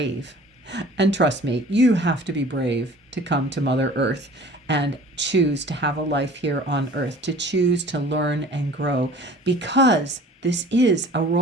And trust me, you have to be brave to come to Mother Earth and choose to have a life here on Earth, to choose to learn and grow, because this is a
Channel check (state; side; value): normal; both; correlation 0.46